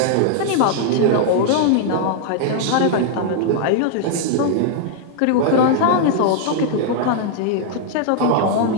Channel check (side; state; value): both; different; correlation -0.01